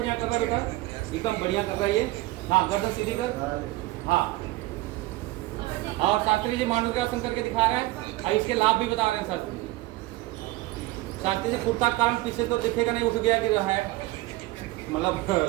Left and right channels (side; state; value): left; quieter; 18.7 dB